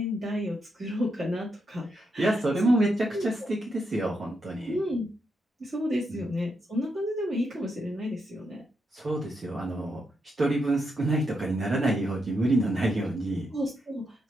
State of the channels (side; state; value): both; normal; correlation 0.82